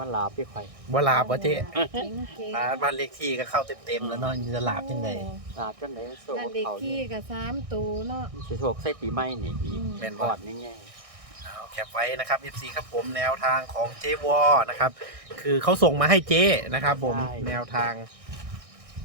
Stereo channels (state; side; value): late; left; 1.6 ms